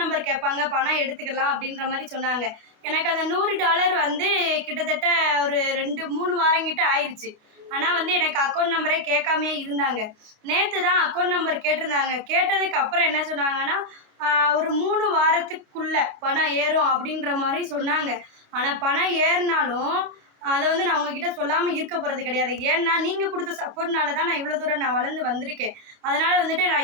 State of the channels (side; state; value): left; late; 28 ms